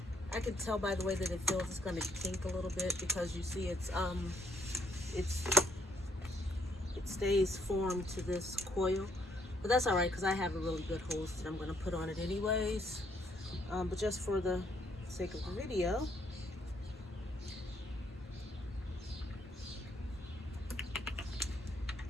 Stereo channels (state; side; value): normal; both; correlation 0.69